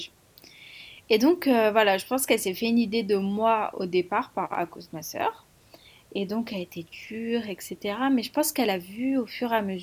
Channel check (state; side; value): identical; both; correlation 1.00